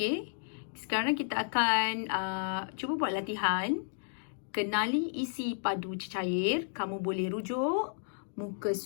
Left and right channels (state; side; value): silent; right; digital silence